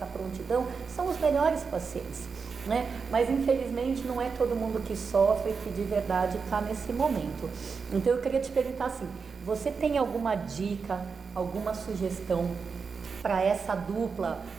prontidão, são os melhores pacientes. Né? Mas infelizmente não é todo mundo que sofre que de verdade está nesse momento. Então eu queria te perguntar assim, você tem alguma dica, alguma sugestão para essa dupla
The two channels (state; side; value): quieter; left; 5.3 dB